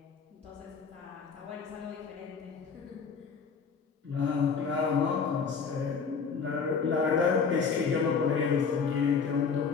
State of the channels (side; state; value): right; quieter; 5.6 dB